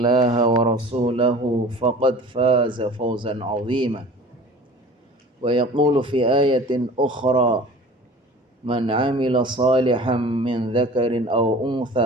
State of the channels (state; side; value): normal; both; correlation 0.43